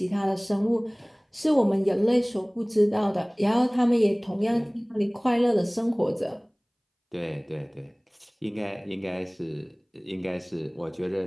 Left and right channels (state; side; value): identical; both; correlation 1.00